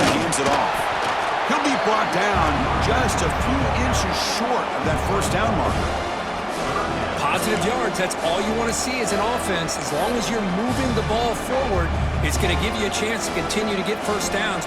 hands it off. He'll be brought down just a few inches short of that first down marker. Positive yards, that's all you want to see as an offense. As long as you're moving the ball forward, it's going to give you a chance to continue to get first downs.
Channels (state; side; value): identical; both; correlation 1.00